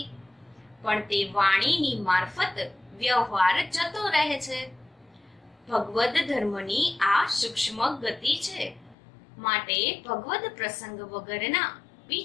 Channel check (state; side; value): drops out; right; at 9.0 s